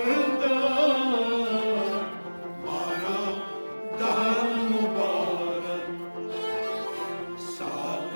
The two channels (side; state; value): both; inverted; correlation -1.00